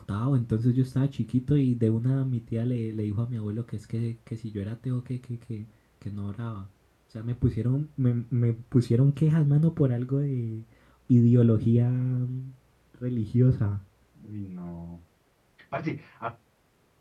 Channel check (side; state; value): both; identical; correlation 1.00